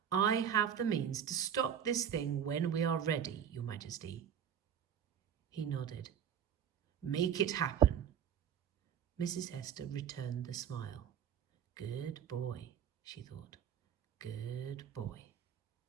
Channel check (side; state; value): left; quieter; 8.6 dB